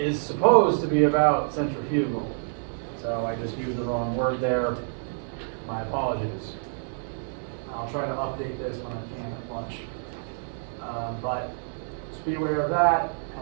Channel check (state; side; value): silent; left; digital silence